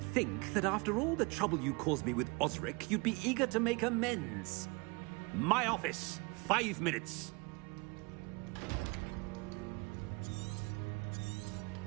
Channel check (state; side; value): quieter; left; 28.6 dB